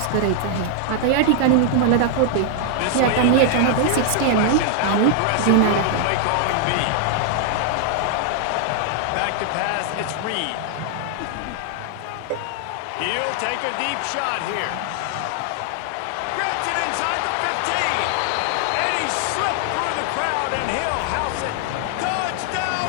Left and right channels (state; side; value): different; both; correlation 0.00